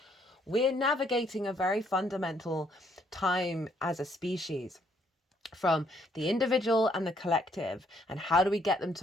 We're navigating a very fundamental time as a species from the individual and the collective, and how do we get them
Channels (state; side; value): normal; both; correlation 0.68